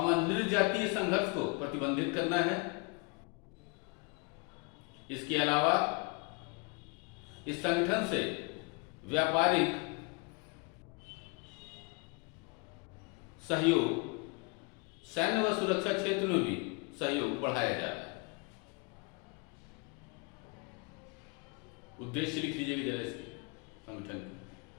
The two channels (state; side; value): quieter; right; 30.5 dB